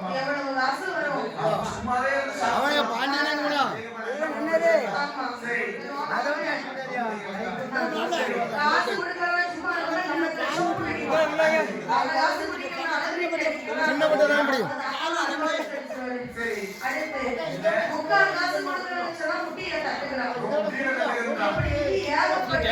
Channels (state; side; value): identical; both; correlation 1.00